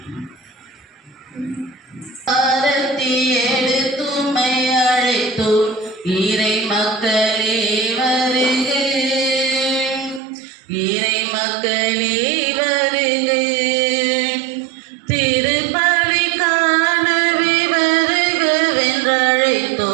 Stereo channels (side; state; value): left; drops out; at 10.2 s